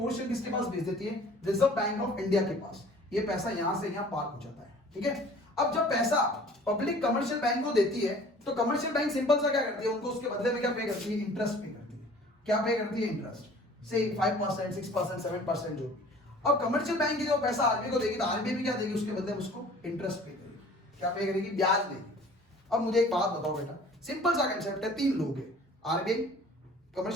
किसके पास भेज देती है, रिजर्व बैंक ऑफ इंडिया के पास। ये पैसा यहां से यहां पार्क हो जाता है, ठीक है। अब जब पैसा पब्लिक कमर्शियल बैंक को देती है तो कमर्शियल बैंक सिंपल सा क्या करती है, उनको उसके बदले में क्या पे करती है, इंटरेस्ट पे करती है। क्या पे करती है, इंटरेस्ट, से 5%, 6%, 7% जो। अब कमर्शियल बैंक की जो पैसा आरबीआई को देगी तो आरबीआई भी क्या देगी, उसके बदले में उसको इंटरेस्ट पे करेगी। क्या पे करेगी, ब्याज देगी। अब मुझे एक बात बताओ बेटा, सिंपल सा कंसेप्ट है, तीन लोग हैं, आरबीआई,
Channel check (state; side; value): normal; both; correlation 0.49